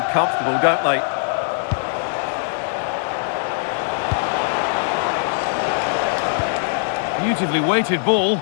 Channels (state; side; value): silent; right; digital silence